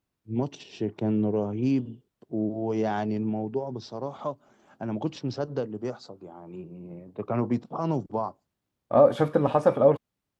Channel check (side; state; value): both; identical; correlation 1.00